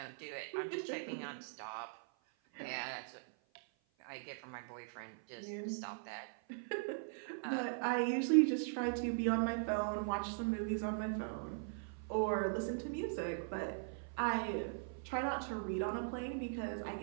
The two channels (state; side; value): silent; left; 51 dB below the other